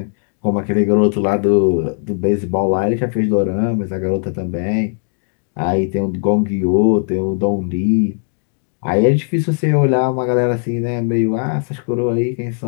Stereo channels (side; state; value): right; silent; 59 dB below the other